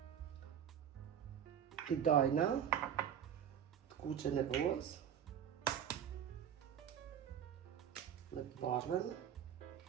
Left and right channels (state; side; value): quieter; left; 9.1 dB